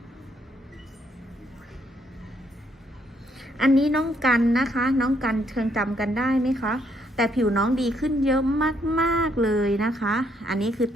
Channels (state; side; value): normal; both; correlation 0.72